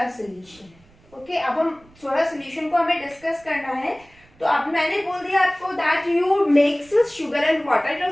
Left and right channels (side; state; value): right; noise; rumble, 29 dB below the sound